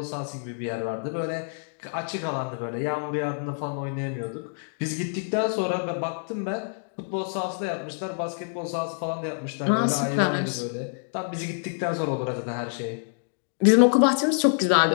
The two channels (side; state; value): right; silent; digital silence